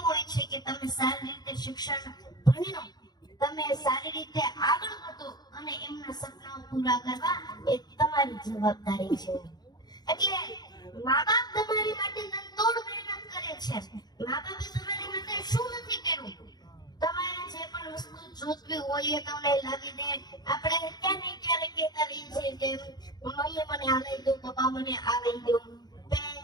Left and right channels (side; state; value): right; late; 0.20 ms